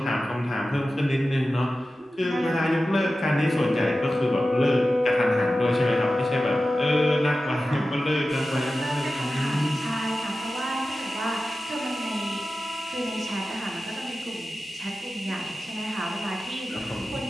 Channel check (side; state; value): both; normal; correlation 0.94